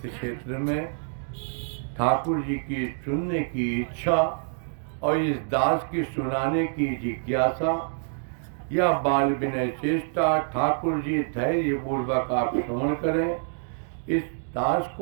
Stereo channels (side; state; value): left; silent; digital silence